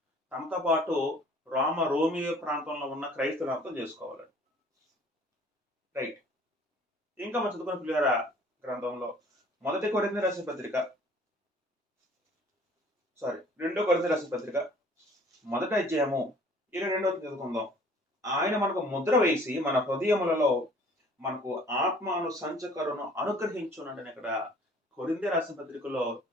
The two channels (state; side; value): normal; both; correlation 0.53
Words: తమతో పాటు రోమియో ప్రాంతంలో ఉన్న క్రైస్తవులు అర్థం చేసుకోవాలండి. రైట్. ఇంకా మనం చదువుకున్న పిల్లల గ్రంథంలో 2 కొరింథీ రాసిన పత్రిక 1వ అధ్యాయము 22వ చదువుకుందాం. ఆయన మనకు ముద్ర వేసి మన హృదయములలో మనకు ఆత్మను సంచకరును అనుగ్రహించునంటే ఇక్కడ కొరింథీ రాసిన పత్రికలో